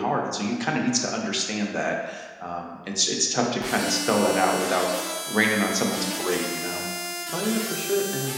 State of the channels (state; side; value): identical; both; correlation 1.00